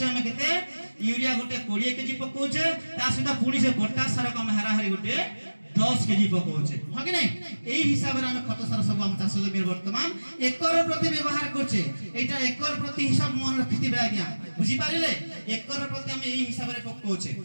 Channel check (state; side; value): inverted; both; correlation -1.00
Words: हमें केते यूरिया गोटे 20 केजी पकोचे ता सहित पुनी से पोटास सार को हम हाराहारी गोटे 10 केजी पकोचे हो कि नहीं एही हिसाब रे हम खत सार सब हम चाष जमीन वर्तमान एकर प्रति व्यवहार करछे एटा एकर प्रति हिसाब मन रखितिबे आज्ञा बुझी पारिले एकर प्रति हम एही हिसाब रे पकोचे